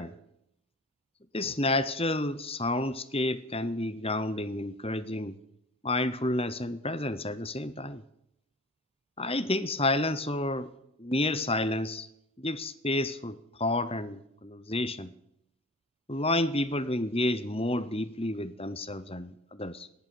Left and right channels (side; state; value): both; normal; correlation 0.40